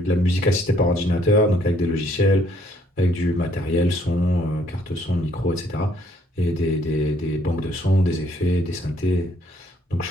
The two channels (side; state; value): both; normal; correlation 0.65